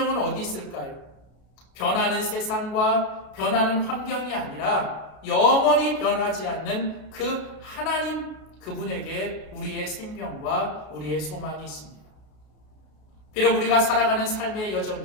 어디 있을까요? 변하는 세상과 변하는 환경이 아니라 영원히 변하지 않는 그 하나님 그분에게 우리의 생명과 우리의 소망이 있습니다. 비록 우리가 살아가는 삶의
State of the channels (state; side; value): late; right; 32 ms